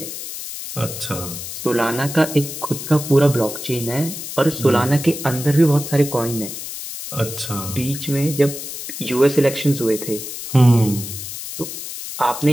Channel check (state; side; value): noise; left; hiss, 8 dB below the sound